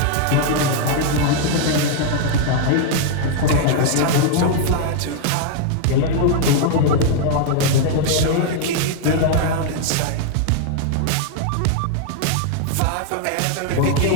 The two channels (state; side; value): different; both; correlation 0.00